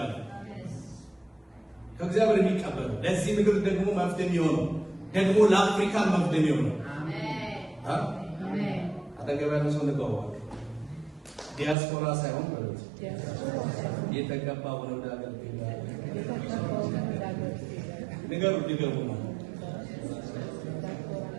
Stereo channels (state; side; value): drops out; left; at 11.8 s